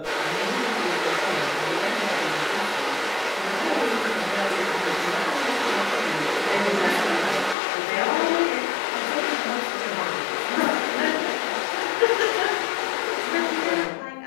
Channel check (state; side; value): drops out; right; at 7.6 s